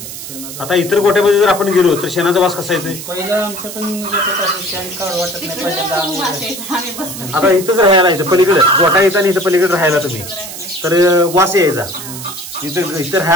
शेणाचा. आता इतर गोट्यामध्ये जर आपण गेलो तर शेणाचा वास कसा येतोय? पहिला आमच्या पण शेण काढ वाटत नाही पहिल्यांदा. आता इथंच राहायला इथं पलीकडे गोटा येता आणि इथं पलीकडे राहायला तुम्ही तर वास यायचा. इथं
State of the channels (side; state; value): right; noise; hiss, 10 dB below the sound